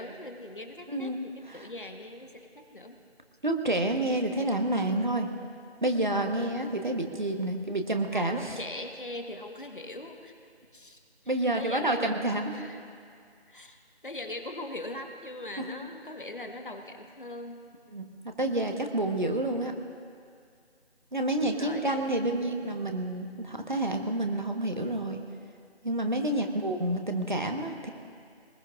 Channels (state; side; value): normal; both; correlation -0.19